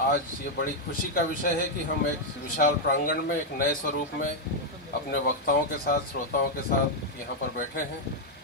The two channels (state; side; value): normal; both; correlation -0.01